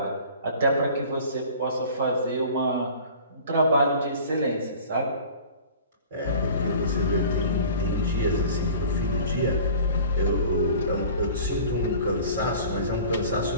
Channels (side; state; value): both; inverted; correlation -0.44